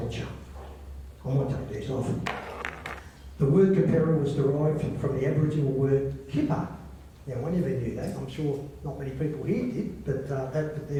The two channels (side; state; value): both; identical; correlation 1.00